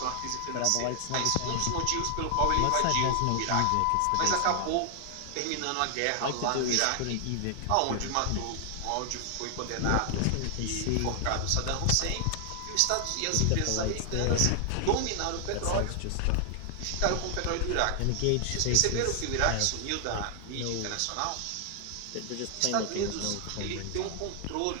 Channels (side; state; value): both; different; correlation 0.00